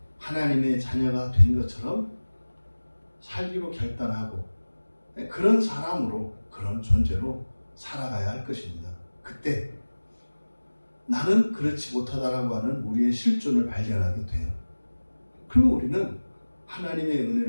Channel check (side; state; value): both; inverted; correlation -1.00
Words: 하나님의 자녀가 된 것처럼 살기로 결단하고 그런 사람으로, 그런 존재로 살아가야 할 것입니다. 그때 나는 그렇지 못하다라고 하는 우리의 실존을 발견하게 돼요. 그러면 우리는 하나님의